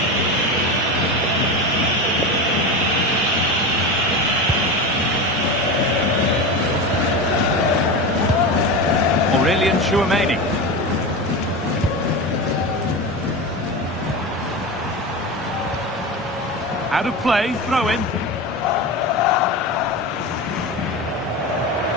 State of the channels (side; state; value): both; normal; correlation 0.23